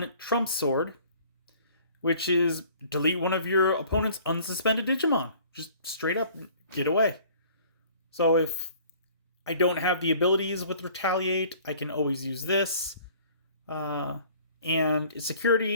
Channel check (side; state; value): both; inverted; correlation -0.52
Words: Trump Sword, which is delete one of your opponent's unsuspended Digimon. Just straight up get away. So if I don't have the abilities with Retaliate, I can always use this. And its